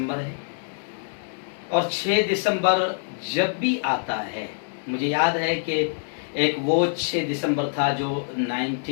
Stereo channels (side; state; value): right; silent; digital silence